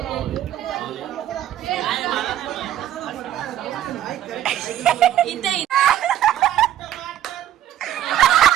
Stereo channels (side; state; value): left; quieter; 11.9 dB